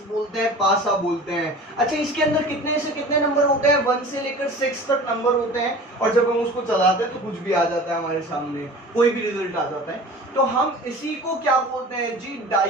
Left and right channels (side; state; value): both; normal; correlation 0.40